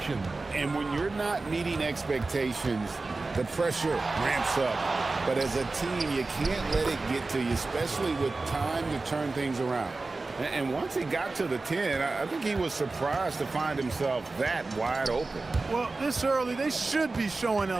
And when you're not meeting expectations, the pressure ramps up. But as a team, you can't let it get to you, especially with time to turn things around. And once he got to the 10, I think he was surprised to find himself that wide open. Well, this early, they should be showing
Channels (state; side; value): quieter; left; 3.5 dB